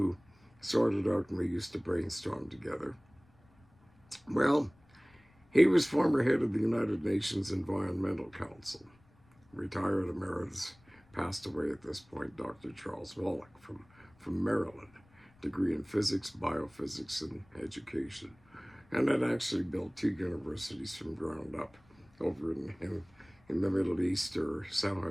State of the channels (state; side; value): noise; left; rumble, 30 dB below the sound